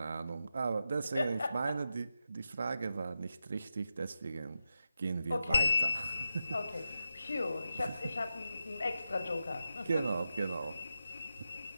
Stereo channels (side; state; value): both; inverted; correlation -0.88